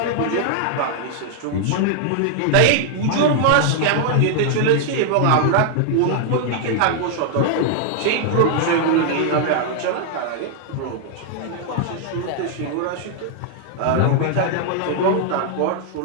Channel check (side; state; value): both; different; correlation 0.00